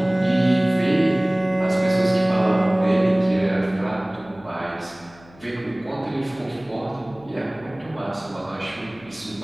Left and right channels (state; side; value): noise; left; hum, 25 dB below the sound